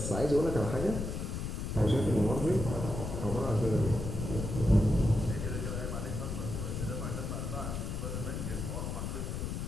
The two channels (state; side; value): noise; left; rumble, 4 dB below the sound